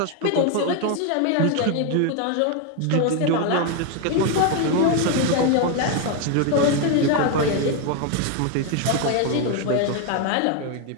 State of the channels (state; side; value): different; both; correlation 0.01